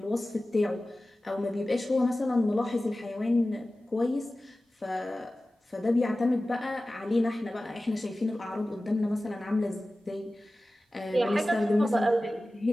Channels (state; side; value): normal; both; correlation 0.96